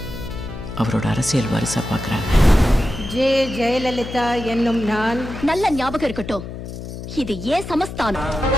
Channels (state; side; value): noise; left; hum, 10 dB below the sound